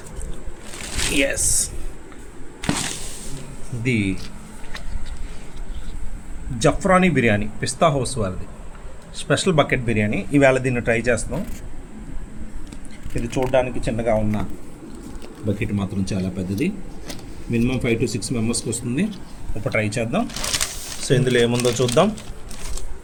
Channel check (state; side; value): identical; both; correlation 1.00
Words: Yes, ఇది జఫ్రానీ బిర్యానీ పిస్తా హౌస్ వారిది స్పెషల్ బకెట్ బిర్యానీ. ఈవేళ దీన్ని ట్రై చేస్తున్నాం. ఇది చూడడానికి చిన్నగా ఉన్న బకెట్ మాత్రం చాలా పెద్దది. మినిమం 5 to 6 మెంబర్స్కి వస్తుంది. ఇప్పుడు ట్రై చేద్దాం. సో ఇందులో ఏముందో చూద్దాం.